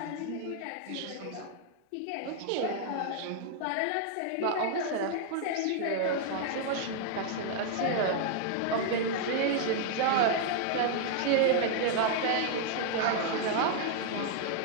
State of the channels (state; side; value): different; both; correlation -0.01